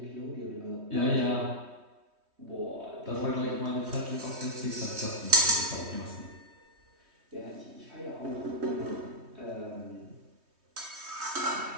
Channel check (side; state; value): left; late; 3.2 ms